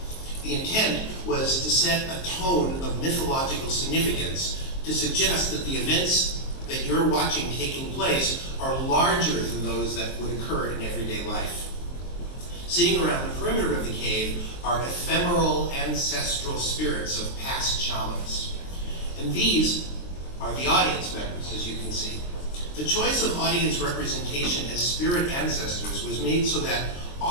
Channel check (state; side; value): late; right; 23 ms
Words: The intent was to set a tone of mythological significance to suggest that the events that you're watching taking place are larger than those that would occur in everyday life. Sitting around the perimeter of the cave are ephemeral ancestral spirits of past shamans. And these are the audience members, as you can see. The choice of audience representation as spirit ancestors was made so that